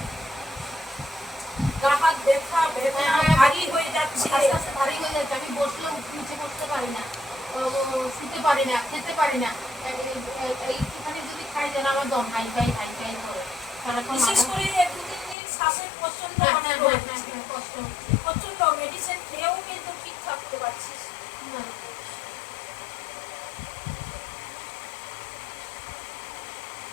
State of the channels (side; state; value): right; drops out; at 15.4 s